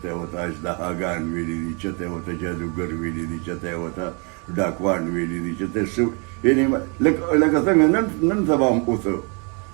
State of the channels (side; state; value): left; quieter; 34.7 dB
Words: یې ورته اژدهاګان ویلي دي، چېرته یې ورته جادوګر ویلي دي، چېرته یې ورته ډاکوان ویلي دي، چېرته یې څه، یعنې لکه څنګه نن سبا هم اوسه